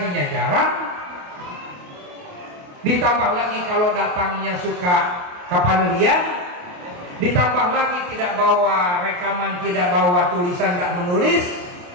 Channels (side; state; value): left; late; 28 ms